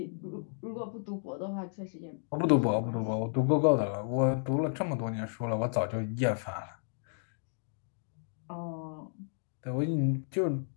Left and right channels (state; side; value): silent; right; digital silence